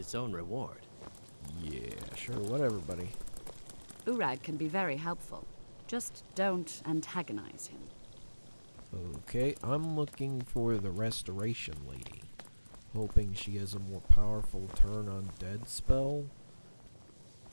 own reward. Yeah, sure, whatever, buddy. Urag can be very helpful. Just don't antagonize him. Okay, I'm looking for the Restoration Lady. Hoping she has a more powerful turn on dead spell.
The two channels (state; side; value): inverted; both; correlation -1.00